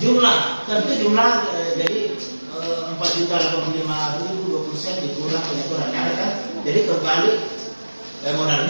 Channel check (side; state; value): both; inverted; correlation -1.00